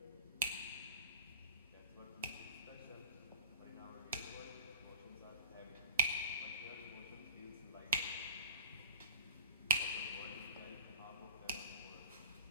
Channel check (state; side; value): inverted; both; correlation -0.33